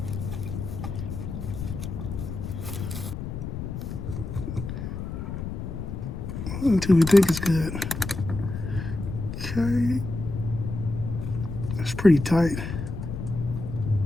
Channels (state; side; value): noise; left; rumble, 6 dB below the sound